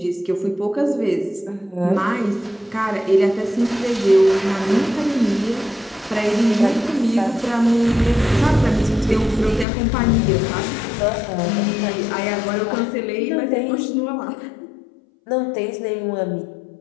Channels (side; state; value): right; drops out; at 9.7 s